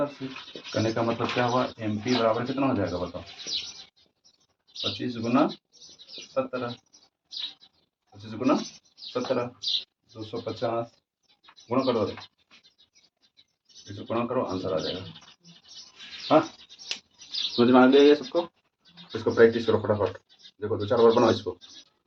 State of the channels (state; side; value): identical; both; correlation 1.00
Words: से करने का मतलब क्या हुआ MP बराबर कितना हो जाएगा बताओ 25 गुना 17 25 गुना 17 250 गुणा करो इसको गुणा करो आंसर आ जाएगा। हाँ समझ में आ गया ये सबको। इसको प्रैक्टिस करो फटाफट। देखो 2-4 बार बनाओ इसको।